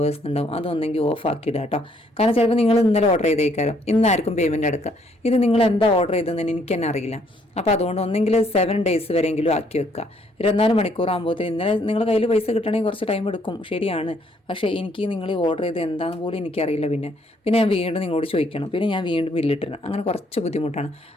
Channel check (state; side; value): normal; both; correlation 0.67